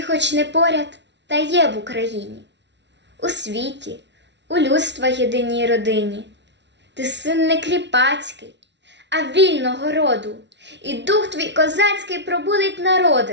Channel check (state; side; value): late; left; 0.51 ms